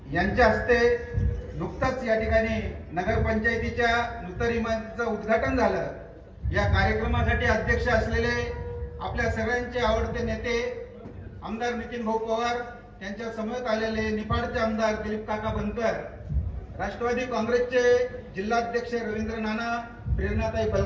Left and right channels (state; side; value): identical; both; correlation 1.00